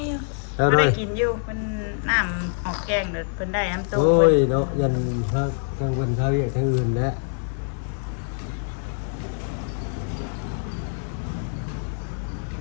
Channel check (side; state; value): right; silent; 62 dB below the other